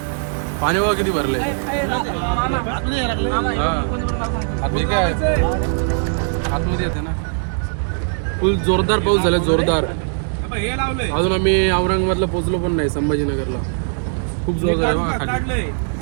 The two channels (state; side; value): silent; left; 65 dB below the other